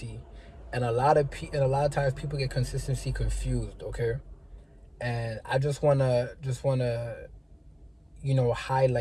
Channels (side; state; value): both; identical; correlation 1.00